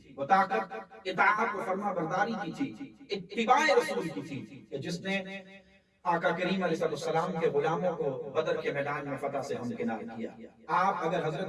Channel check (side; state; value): both; identical; correlation 1.00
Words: وہ طاقت اطاعت و فرما برداری کی تھی، اتباع رسول کی تھی، کہ جس نے آقا کریم علیہ السلام کے غلاموں کو بدر کے میدان میں فتح سے ہمکنار کیا۔ آپ اگر